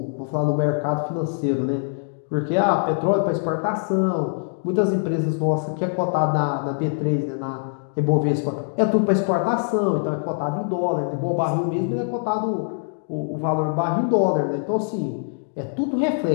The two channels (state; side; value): silent; right; digital silence